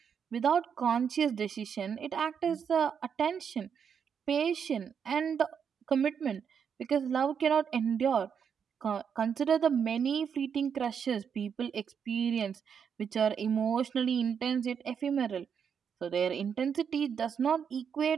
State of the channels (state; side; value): quieter; left; 7.2 dB